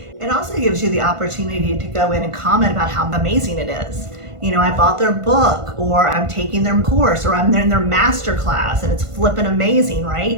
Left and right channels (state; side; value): late; left; 1.5 ms